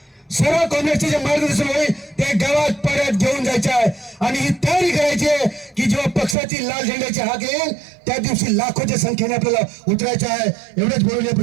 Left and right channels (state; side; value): drops out; left; at 6.4 s